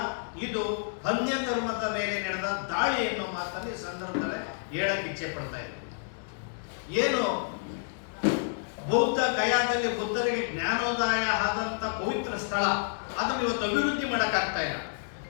ಇದು ಅನ್ಯ ಧರ್ಮದ ಮೇಲೆ ನಡೆದ ದಾಳಿ ಎನ್ನುವ ಮಾತನ್ನು ಈ ಸಂದರ್ಭದಲ್ಲಿ ಹೇಳಕ್ಕೆ ಇಚ್ಛೆ ಪಡ್ತಾ ಇದ್ದೀವಿ. ಏನು ಬೌದ್ಧ ಗಯಾದಲ್ಲಿ ಬುದ್ಧರಿಗೆ ಜ್ಞಾನೋದಯ ಆದಂತ ಪವಿತ್ರ ಸ್ಥಳ, ಅದನ್ನು ಇವತ್ತು ಅಭಿವೃದ್ಧಿ ಮಾಡಕ್ಕಾಗ್ತಾ ಇಲ್ಲ.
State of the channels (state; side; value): silent; right; digital silence